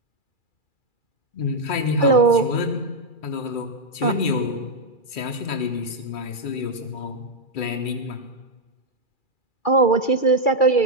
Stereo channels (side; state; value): right; late; 2.4 ms